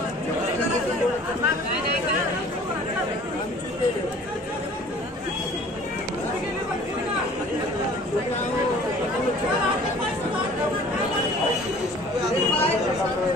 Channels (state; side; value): normal; both; correlation 0.50